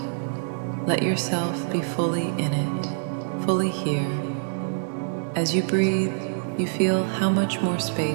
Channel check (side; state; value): left; silent; 59 dB below the other